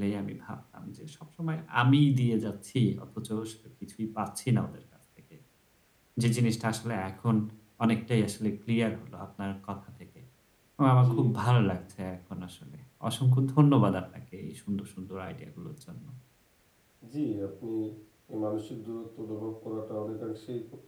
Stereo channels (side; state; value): both; identical; correlation 1.00